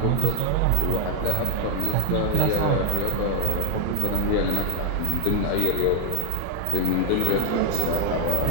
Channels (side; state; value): both; different; correlation 0.01